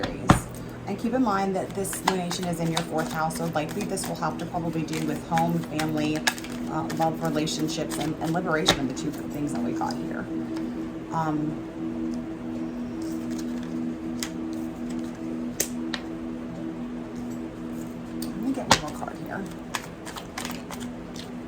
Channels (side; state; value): both; identical; correlation 1.00